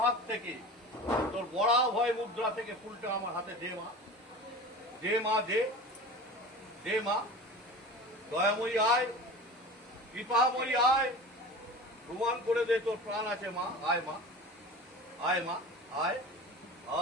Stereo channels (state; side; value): normal; both; correlation 0.35